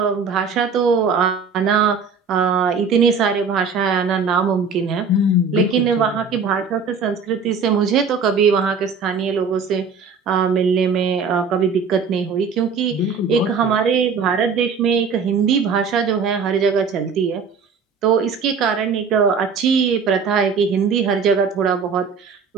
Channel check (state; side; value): quieter; left; 5.3 dB